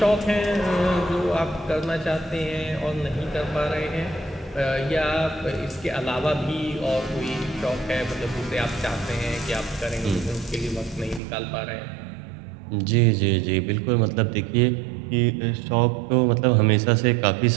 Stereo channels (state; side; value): drops out; left; at 11.2 s